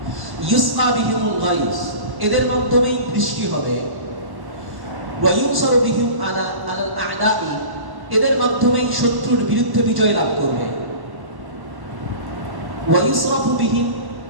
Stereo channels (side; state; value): left; late; 1.1 ms